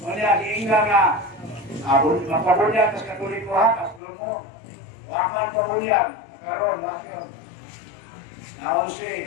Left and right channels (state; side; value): drops out; right; at 4.0 s